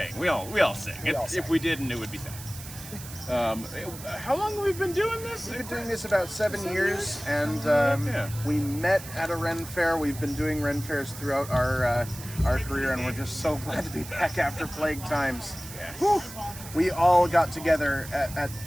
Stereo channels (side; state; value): right; noise; hiss, 14 dB below the sound